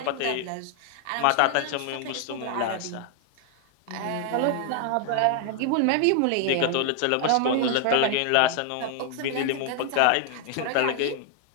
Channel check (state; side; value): different; both; correlation 0.00